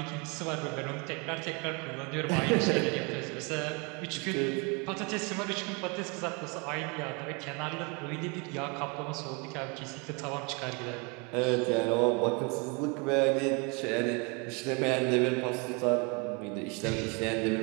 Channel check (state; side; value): quieter; left; 31.2 dB